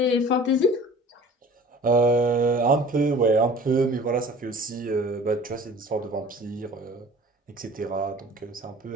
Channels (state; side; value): normal; both; correlation 0.45